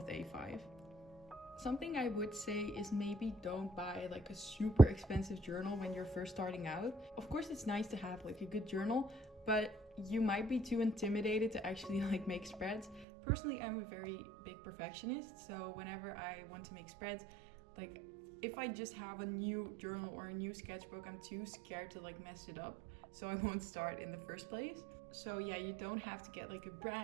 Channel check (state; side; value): drops out; left; at 13.1 s